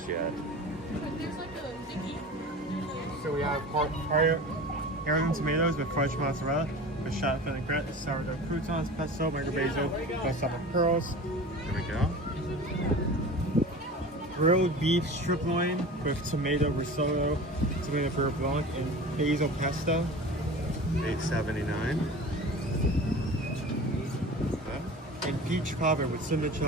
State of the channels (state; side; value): normal; both; correlation 0.36